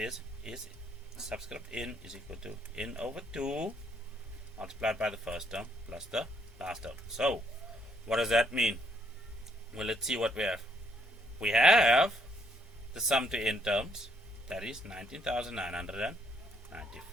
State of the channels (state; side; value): normal; both; correlation 0.70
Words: is subscript n is equal to n over 2 multiplied by the first term plus the last term. So what does that mean? Well, let's see what we have. We have the sum to n terms, that is